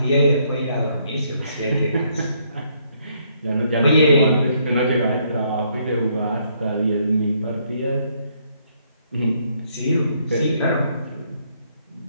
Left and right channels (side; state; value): both; inverted; correlation -0.70